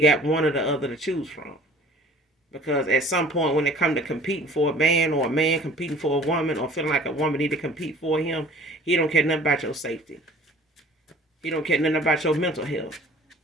one or the other to choose from. Because at some point when it come to competing for a man, or a man competing for a woman, or feeling like a woman need to compete for him, he don't care nothing about your safety. He don't care nothing about your mental health.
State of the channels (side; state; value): both; normal; correlation 0.50